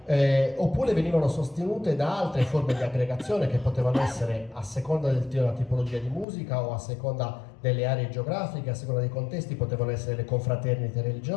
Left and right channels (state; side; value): drops out; right; at 6.2 s